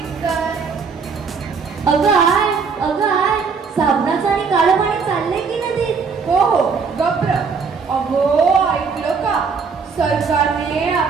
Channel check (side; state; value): left; quieter; 5.4 dB